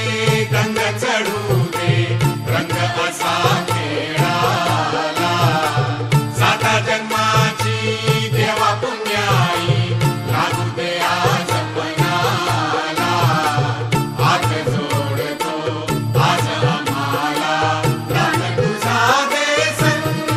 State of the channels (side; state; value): both; identical; correlation 1.00